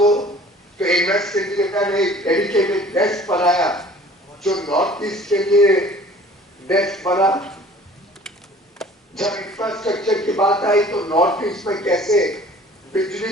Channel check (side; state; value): both; normal; correlation 0.49